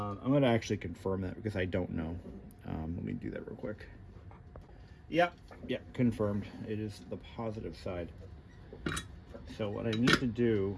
gonna actually confirm that because I don't know. Let me do that real quick. Yeah, confirmed. It is the positive side. So what I need to do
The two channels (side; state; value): both; identical; correlation 1.00